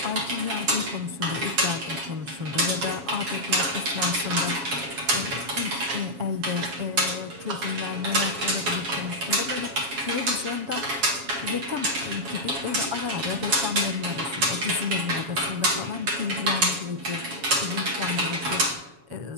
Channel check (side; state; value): left; late; 7.2 ms